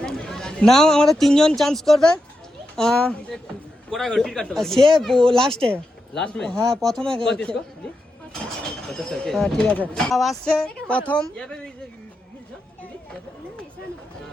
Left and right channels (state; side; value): normal; both; correlation 0.87